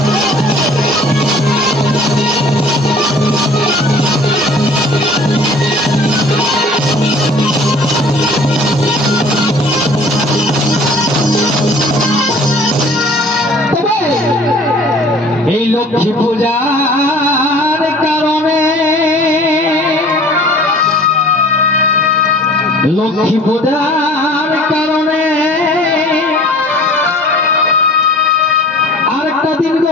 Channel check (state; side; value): normal; both; correlation 0.48